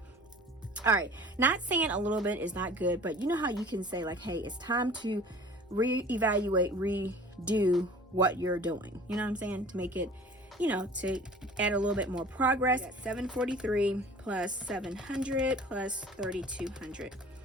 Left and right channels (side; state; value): both; normal; correlation 0.45